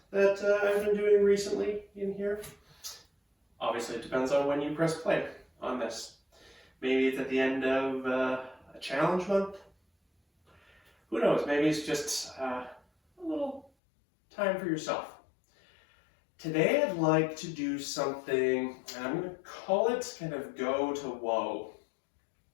that I've been doing recently in here. Obviously, it depends on when you press play on this. Maybe it's at the end of a challenge month. Who knows? Maybe it's just a little time for yourself. Today I'd like to do something, and I'm going to call it kind of go to whoa.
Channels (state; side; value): drops out; right; at 13.7 s